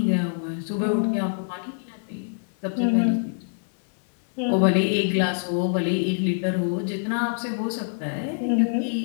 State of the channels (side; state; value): right; silent; digital silence